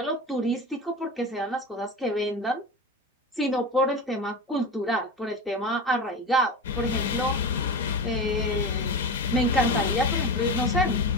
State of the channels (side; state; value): both; normal; correlation 0.26